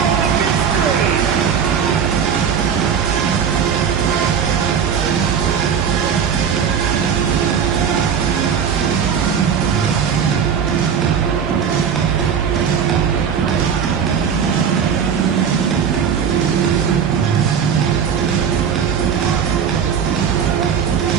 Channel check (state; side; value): quieter; left; 7.4 dB